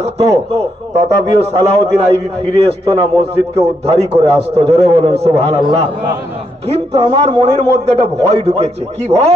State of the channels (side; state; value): both; normal; correlation 0.78